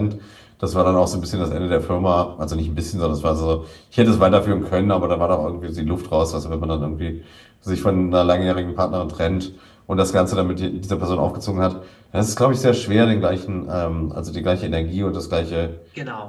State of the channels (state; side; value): identical; both; correlation 1.00